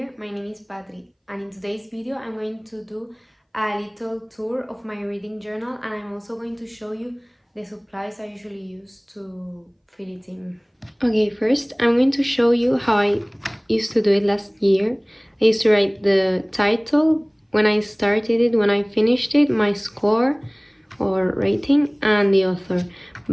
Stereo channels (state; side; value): identical; both; correlation 1.00